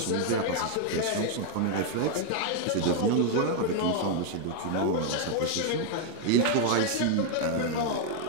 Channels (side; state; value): both; different; correlation 0.00